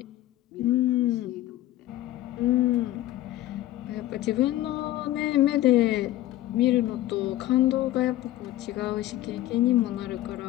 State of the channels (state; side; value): quieter; right; 14.8 dB